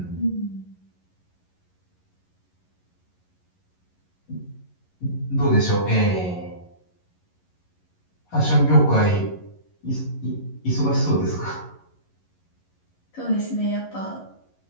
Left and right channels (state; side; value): late; right; 11 ms